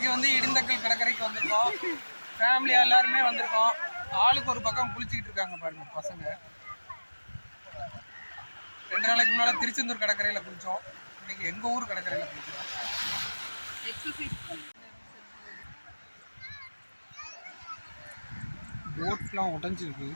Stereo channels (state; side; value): inverted; both; correlation -1.00